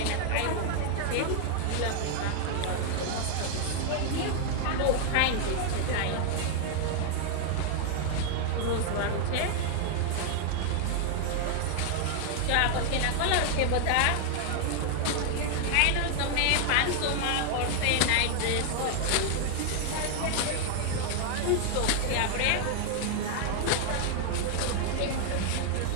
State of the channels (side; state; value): both; different; correlation 0.00